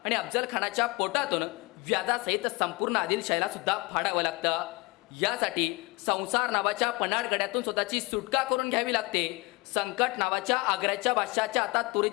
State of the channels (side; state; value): right; quieter; 24.7 dB